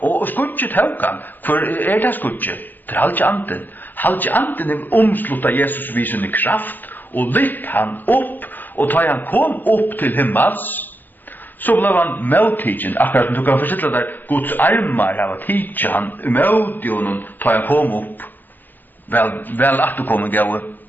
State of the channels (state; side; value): late; right; 0.088 ms